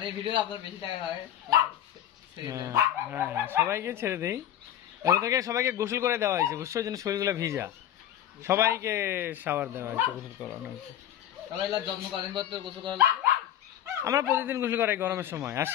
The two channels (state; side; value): quieter; right; 11.2 dB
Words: হ্যাঁ সবাইকে ছেড়ে দেই। ওদেরকে সবাইকে গোসল করে দেওয়া হয়েছে বুঝছো, জন্য শরীরগুলো ভিজা, সবাইকে শাওয়ার দেওয়া হয়েছে, গোসল করানো হয়েছে। আমরা প্রতিদিন গোসল করাই গরমের সময়, আর